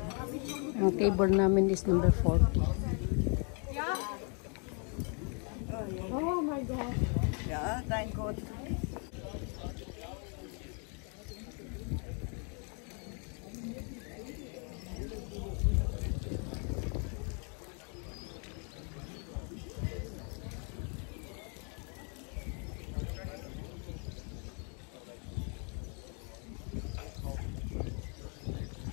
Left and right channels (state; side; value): quieter; right; 38.3 dB